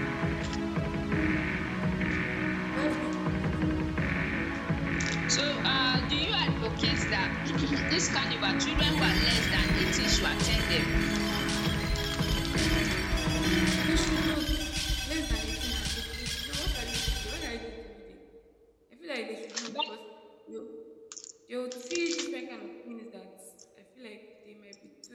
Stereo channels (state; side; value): identical; both; correlation 1.00